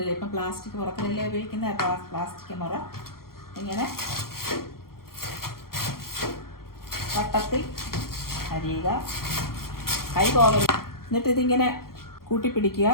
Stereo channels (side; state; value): right; late; 0.93 ms